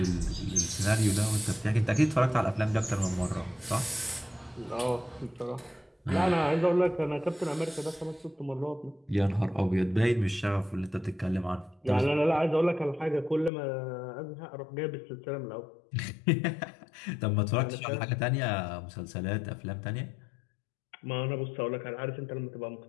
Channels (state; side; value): drops out; right; at 13.5 s